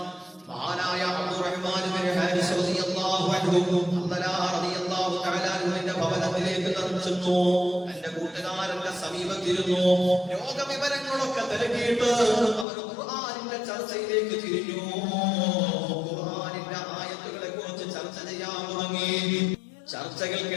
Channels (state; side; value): drops out; right; at 12.7 s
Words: മഹാനായ അബ്ദുറഹ്മാൻ ഇബ്നു ഹാരിസ് റളിയല്ലാഹു അൻഹു ഹല്ലലാ റളിയല്ലാഹു തആല അൻഹുവിന്റെ ഭവനത്തിലേക്ക് ചെന്നു. എന്റെ കൂട്ടുകാരന്റെ സമീപത്തിരുന്നു. രോഗവിവരങ്ങളൊക്കെ തിരക്കിയിട്ട് അവർ ഖുർആനിന്റെ ചർച്ചയിലേക്ക് തിരിഞ്ഞു. ഖുർആനിന്റെ ആയത്തുകളെ കുറിച്ച് ചർച്ച ചെയ്യാൻ തുടങ്ങി.